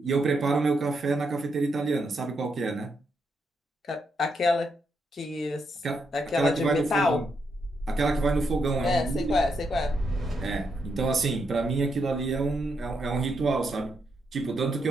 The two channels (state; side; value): normal; both; correlation 0.80